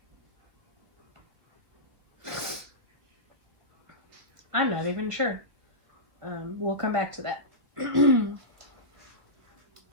I'm not even sure. We'll come back to that.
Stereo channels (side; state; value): left; late; 1.9 ms